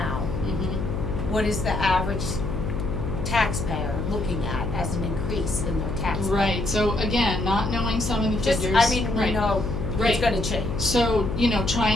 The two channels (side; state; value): left; noise; hum, 4 dB below the sound